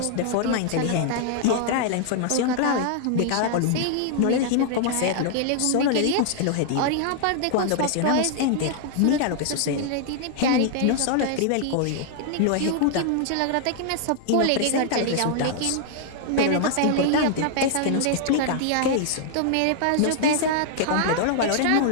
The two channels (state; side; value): different; both; correlation -0.01